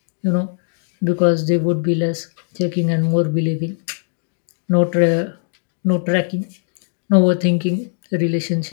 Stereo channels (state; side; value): silent; right; digital silence